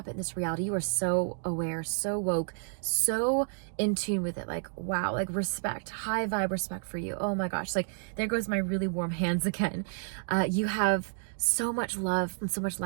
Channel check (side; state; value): left; silent; digital silence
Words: in this reality. You are so aware, so woke, so in tune with it. Like, wow, like respect, high vibe respect for you. Oh my gosh, like there goes my really warm hands again. You have so much love and so much